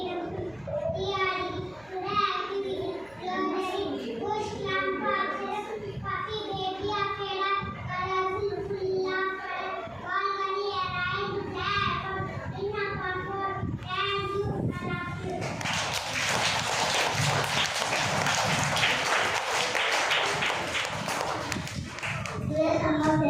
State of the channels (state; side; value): noise; right; hum, 26 dB below the sound